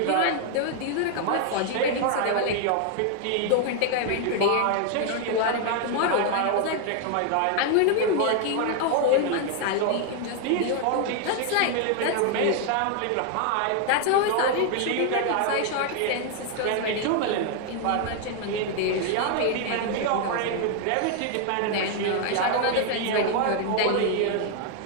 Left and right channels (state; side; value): different; both; correlation 0.00